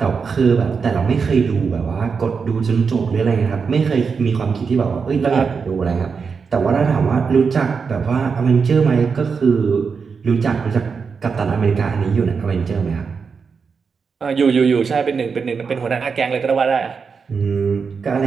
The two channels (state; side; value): quieter; left; 5.5 dB